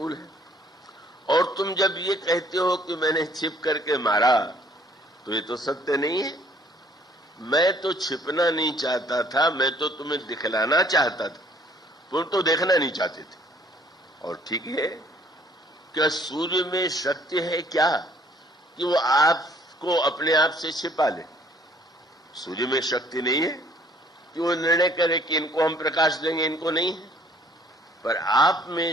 है। और तुम जब ये कहते हो कि मैंने छिप करके मारा, तो ये तो सत्य नहीं है। मैं तो छिपना नहीं चाहता था, मैं तो तुम्हें दिखलाना चाहता था, तुम तो देखना नहीं चाहते थे। और ठीक है, क्या सूर्य में शक्ति है क्या कि वो आपको अपने आप से छिपा ले? सूर्य में शक्ति नहीं है कि वो निर्णय करे कि इनको हम प्रकाश देंगे, इनको नहीं है। पर आप में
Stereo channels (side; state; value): both; normal; correlation 0.60